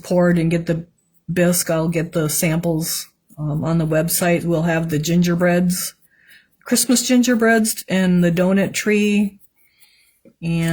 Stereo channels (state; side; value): identical; both; correlation 1.00